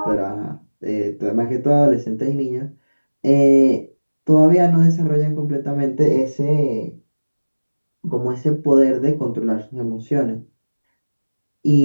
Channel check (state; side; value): inverted; both; correlation -1.00